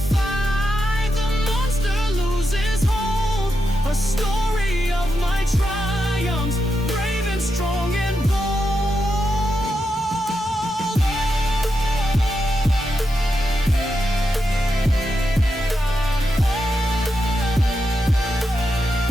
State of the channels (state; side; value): normal; both; correlation 0.86